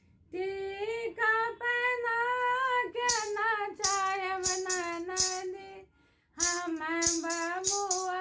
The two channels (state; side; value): identical; both; correlation 1.00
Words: टीका पहना के नचायब ननदी, हम